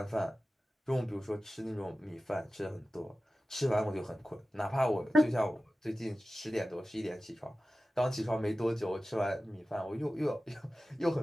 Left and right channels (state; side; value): normal; both; correlation 0.95